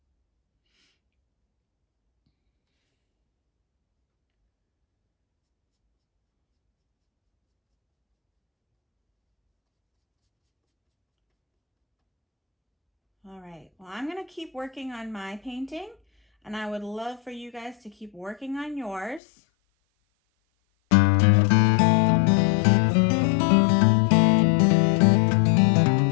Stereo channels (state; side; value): drops out; right; at 19.2 s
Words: All right, well, I'm gonna keep working on my painting, and I would love for you guys to keep working on yours.